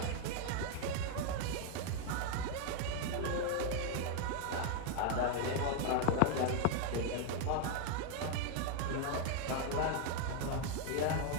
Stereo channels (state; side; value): different; both; correlation 0.00